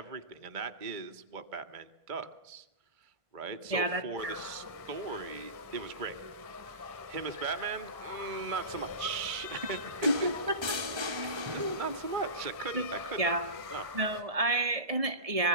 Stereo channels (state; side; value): late; left; 1.3 ms